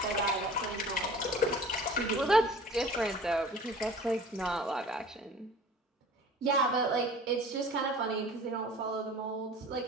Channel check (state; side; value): normal; both; correlation 0.44